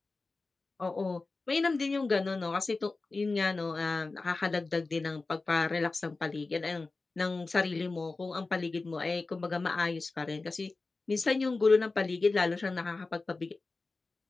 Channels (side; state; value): right; quieter; 3.6 dB